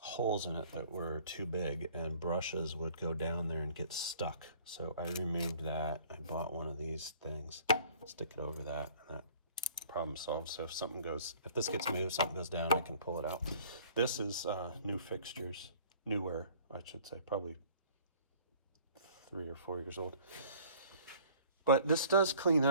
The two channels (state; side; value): inverted; both; correlation -0.53